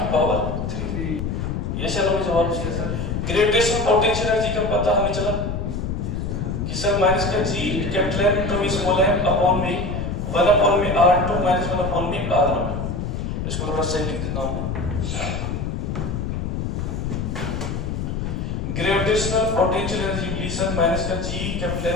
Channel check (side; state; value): left; noise; rumble, 3 dB below the sound